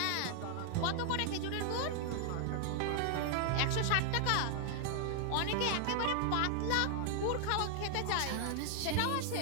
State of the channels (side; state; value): both; different; correlation 0.00